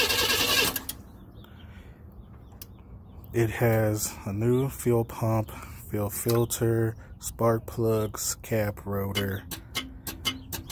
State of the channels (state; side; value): identical; both; correlation 1.00